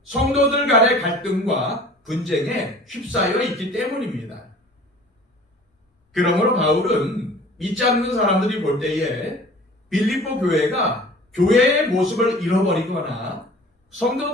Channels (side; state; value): both; normal; correlation 0.45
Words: 성도들 간의 갈등과 분쟁에 휩싸여 있기 때문입니다. 그러므로 바울은 믿지 않는 사람들이 볼 때에 빌립보 교회가 교회의 모습을 잃어버리거나